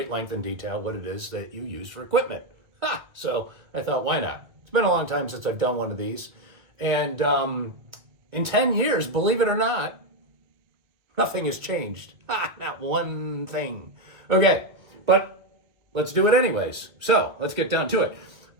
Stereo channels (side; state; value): left; late; 1.6 ms